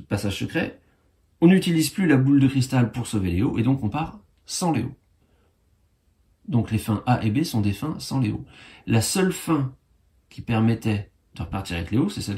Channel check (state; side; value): identical; both; correlation 1.00